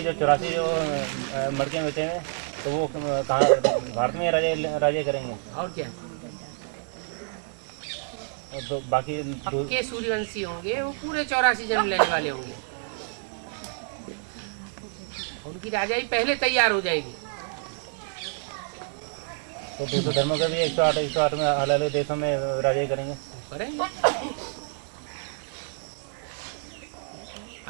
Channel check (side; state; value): left; silent; 60 dB below the other